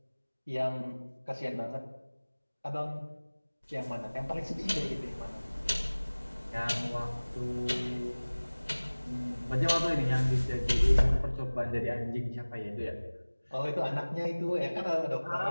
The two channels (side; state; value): both; inverted; correlation -1.00